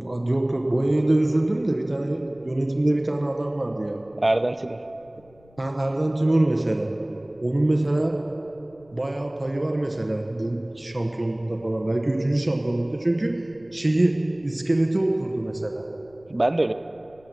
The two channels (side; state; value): left; noise; rumble, 29 dB below the sound